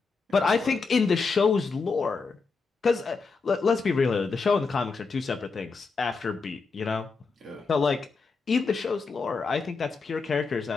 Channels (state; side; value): quieter; right; 4.6 dB